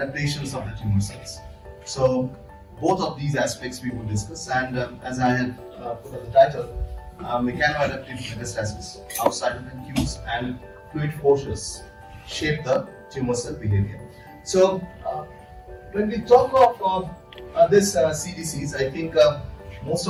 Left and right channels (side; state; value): both; identical; correlation 1.00